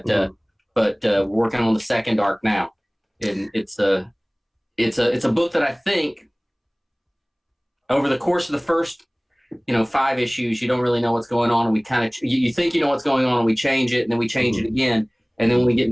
we're working on the second arc now. And it's a book that I think over the course of the first 5 issues, you don't really know what's going on, and we kind of you think you know what's going on, and we change it, and then we change it again, and then when we get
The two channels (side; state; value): both; identical; correlation 1.00